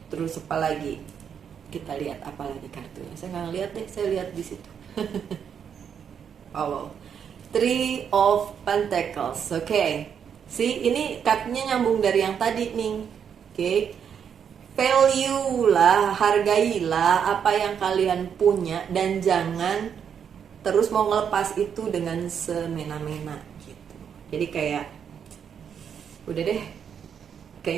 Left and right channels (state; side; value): quieter; left; 7.7 dB